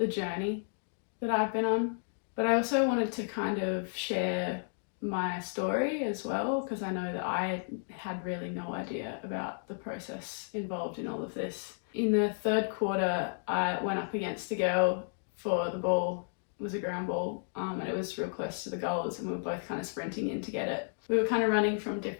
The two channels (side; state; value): right; silent; digital silence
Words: journey that I've been on. But I also wanted to kind of share my story as well, because I know that I had really no idea about the process involved in all of this. In the third quarter, I went up against a girl for the ball. It was a ground ball, and it was real close to the goals, and we were both kind of sprinting in to get it. We were kind of running from